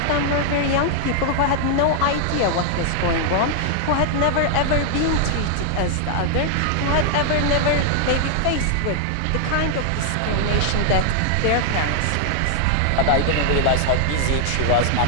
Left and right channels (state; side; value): different; both; correlation 0.00